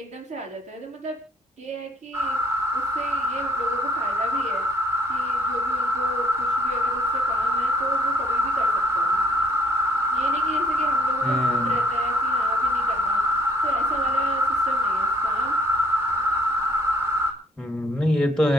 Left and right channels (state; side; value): normal; both; correlation 0.61